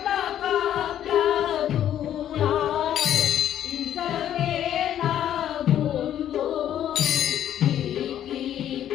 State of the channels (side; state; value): right; quieter; 10.9 dB